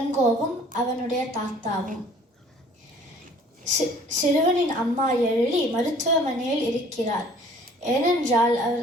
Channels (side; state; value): both; normal; correlation 0.53